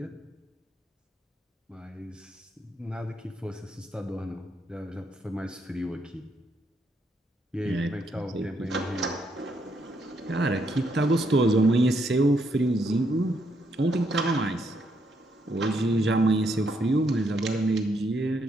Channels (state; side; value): normal; both; correlation 0.75